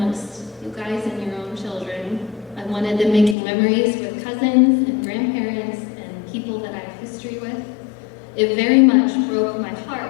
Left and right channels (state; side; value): drops out; right; at 3.4 s